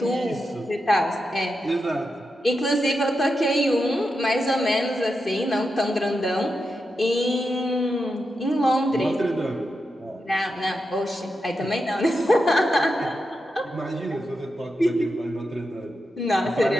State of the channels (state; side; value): normal; both; correlation 0.87